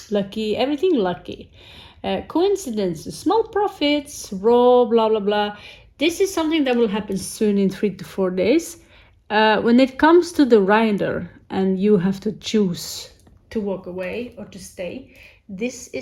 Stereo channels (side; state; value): both; identical; correlation 1.00